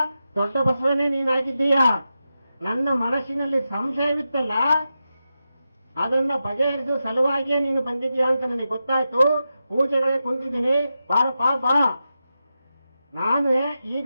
ದೊಡ್ಡ ಬಸವನೇ ನೀನಾಗಿದ್ದೀಯಾ. ನನ್ನ ಮನಸ್ಸಿನಲ್ಲಿ ಸಂಶಯವಿತ್ತಲ್ಲ, ಅದನ್ನ ಬಗೆಹರಿಸುವ ಸಲುವಾಗಿಯೇ ನೀನು ಬಂದಿದ್ದೀಯಾ ಅಂತ ನನಗೆ ಗೊತ್ತಾಯ್ತು. ಪೂಜೆಗಳೇ ಕುಂತಿದ್ದೀನಿ, ಬಾರಪ್ಪ ಬಾ. ನಾನು ಈಗ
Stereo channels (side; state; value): both; inverted; correlation -0.90